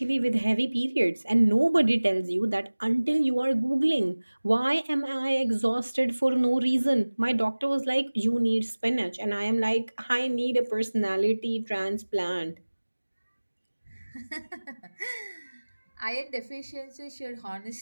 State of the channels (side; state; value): both; inverted; correlation -1.00